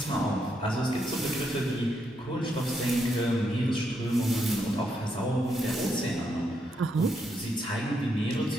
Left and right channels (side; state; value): both; normal; correlation 0.79